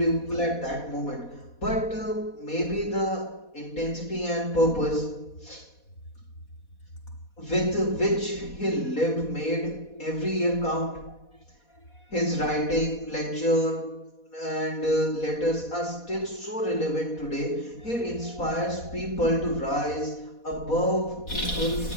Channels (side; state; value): right; late; 4.1 ms